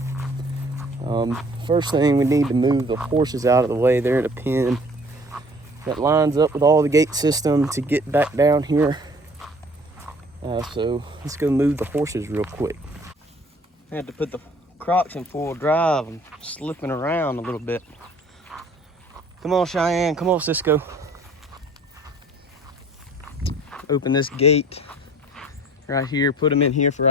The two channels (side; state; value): both; normal; correlation 0.53